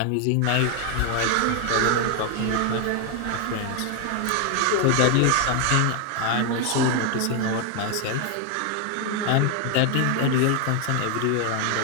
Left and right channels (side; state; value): both; different; correlation 0.01